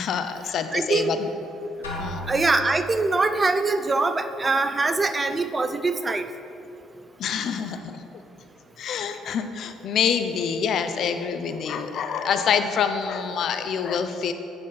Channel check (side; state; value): both; normal; correlation 0.73